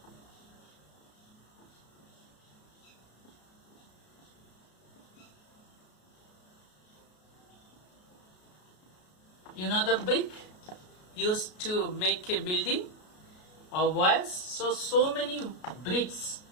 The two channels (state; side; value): late; right; 33 ms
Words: You know the brick used to make a building or walls. So many bricks.